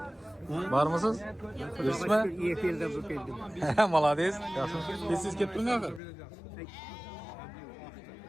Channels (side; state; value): right; drops out; at 6.0 s